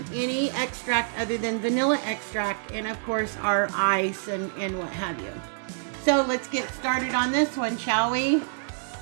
any extract other than vanilla extract and, of course, our ice and what have you. So let's get started on this one, shall we?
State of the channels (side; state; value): left; silent; digital silence